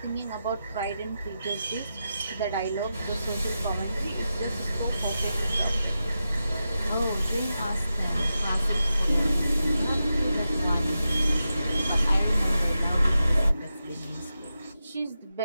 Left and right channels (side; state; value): both; inverted; correlation -0.90